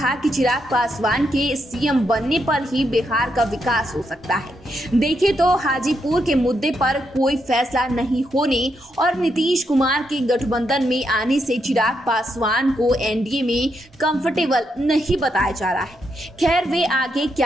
कि चिराग पासवान के सीएम बनने पर ही बिहार का विकास हो सकता है। देखें तो हाजीपुर के मुद्दे पर कोई फैसला नहीं होने और नीतीश कुमार के गठबंधन में आने से चिराग पासवान को एनडीए में कंफर्टेबल नहीं बताया जा रहा है। खैर, वे आगे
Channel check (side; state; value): both; normal; correlation 0.80